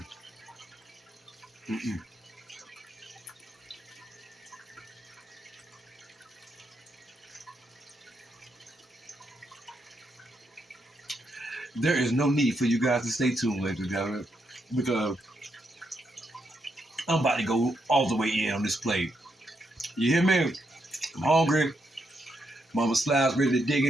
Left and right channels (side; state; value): both; normal; correlation 0.80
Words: There is no need for you guys to stay tuned, ladies and gentlemen, because I'm about to go all the way in on this plate. You hear me? I'm hungry. Mama Slabz ready to dig